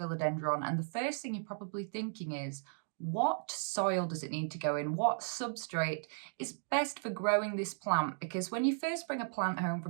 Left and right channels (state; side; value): silent; left; digital silence